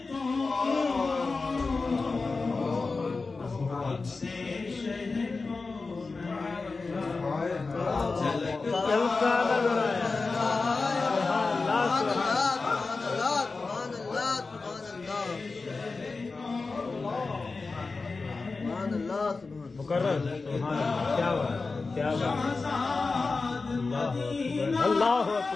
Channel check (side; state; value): right; quieter; 4.0 dB